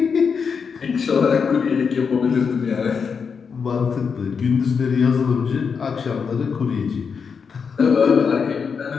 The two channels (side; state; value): right; quieter; 6.0 dB